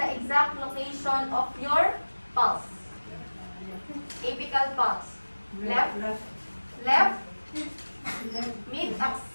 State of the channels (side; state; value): both; inverted; correlation -1.00